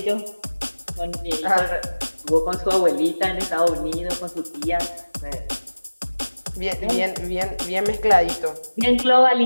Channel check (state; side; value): inverted; both; correlation -1.00